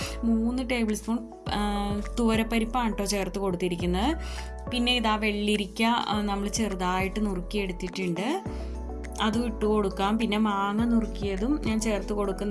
3 ടേബിൾ സ്പൂൺ തുവരപ്പരിപ്പാണ് കേട്ടോ ചേർത്ത് കൊടുത്തിരിക്കുന്നത്. പിന്നെ ഇതാ വെള്ളിരിക്ക നമ്മൾ ചെറുതായിട്ട് നുറുക്കിയെടുത്തിട്ടുണ്ട്, അതും ഇട്ട് കൊടുക്കാം. പിന്നെ മാങ്ങ നുറുക്കിയതും ഞാൻ ചേർത്ത്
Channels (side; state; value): both; identical; correlation 1.00